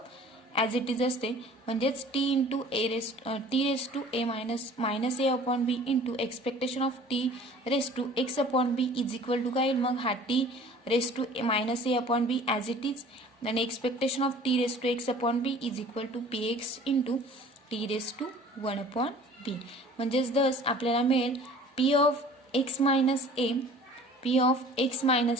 as it is असते म्हणजेच t into T raise to a minus A upon B into expectation of T raise to x upon b is equal to काय येईल मग हा t raise to minus A upon b as it is आणि expectation of T raise to x upon b is equal to p x into T raise to 1 upon b म्हणजेच thus आपल्याला मिळेल p of x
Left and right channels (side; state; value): both; normal; correlation 0.48